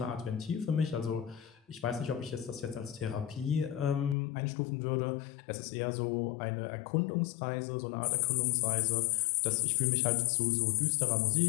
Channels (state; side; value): drops out; right; at 4.2 s